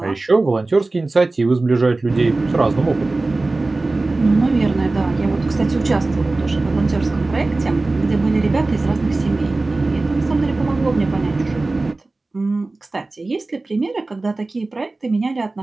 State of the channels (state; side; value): quieter; left; 3.2 dB